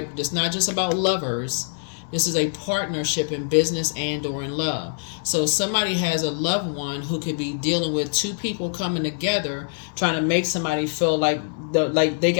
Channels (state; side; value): silent; right; digital silence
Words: It's not just about lovers. This is a partnership in business and or in love. So somebody has a loved one who could be dealing with two people coming together, trying to make somebody feel like they